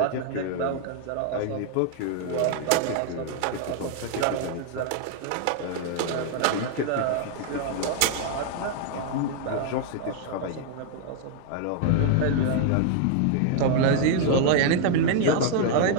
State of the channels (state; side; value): different; both; correlation 0.00